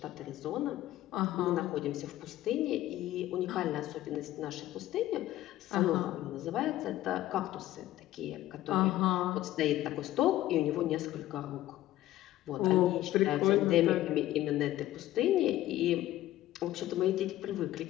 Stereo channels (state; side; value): quieter; right; 14.6 dB